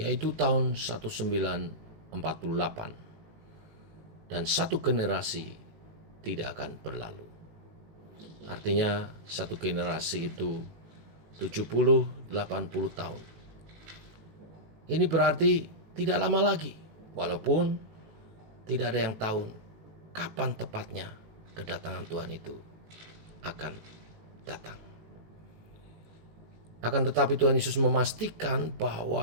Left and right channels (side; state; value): left; late; 19 ms